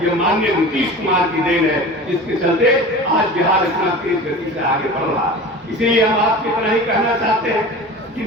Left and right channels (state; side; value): normal; both; correlation 0.35